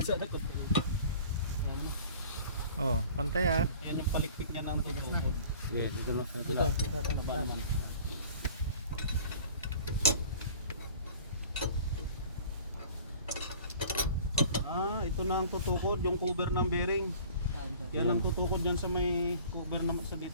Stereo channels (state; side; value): inverted; both; correlation -0.46